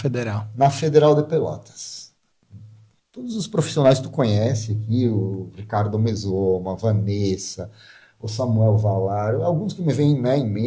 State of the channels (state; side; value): identical; both; correlation 1.00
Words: Na Federal de Pelotas. Todos os profissionais que tu conhece aqui, o Ricardo Mesoma, a Vanessa, o Samuel Valar, alguns que me vêm, né, em